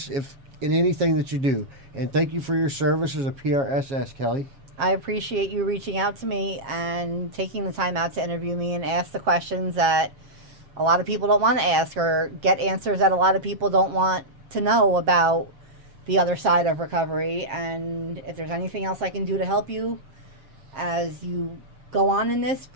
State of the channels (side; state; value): left; late; 7.5 ms